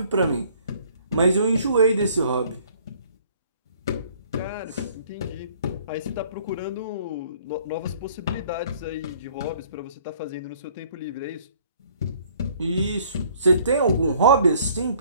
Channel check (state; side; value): inverted; both; correlation -0.57